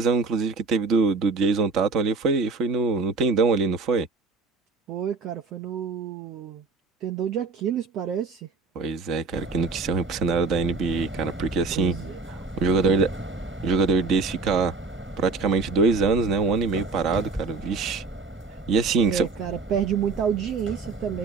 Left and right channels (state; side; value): quieter; left; 4.3 dB